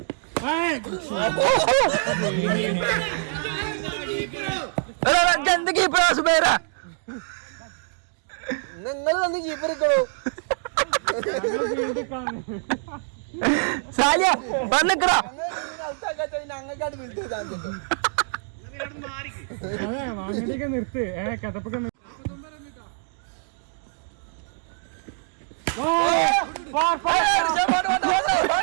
എന്ത് കീപ്പറാ സുബൈറ? നിങ്ങൾ വന്ന് കീപ്പർ എടുക്കണോ? സാലിയ പറഞ്ഞിക്കടാ. അതെ വാങ്ങടിയൊക്കെ നിർത്ത്. കഥപ്പൊക്കെ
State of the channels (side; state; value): left; silent; digital silence